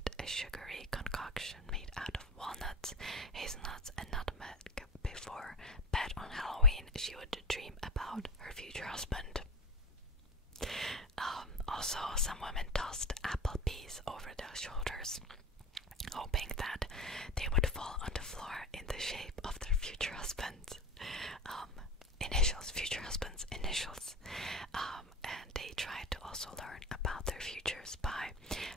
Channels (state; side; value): normal; both; correlation 0.28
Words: a sugary concoction made out of walnuts, hazelnuts and nutmeg before bed on Halloween, she would dream about her future husband. Also, some women tossed apple peas over their shoulders, hoping that they would fall on the floor in the shape of their future husband's initials. And they tried to also learn about their futures by